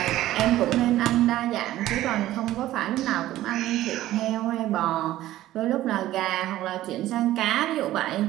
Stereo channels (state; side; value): quieter; left; 14.6 dB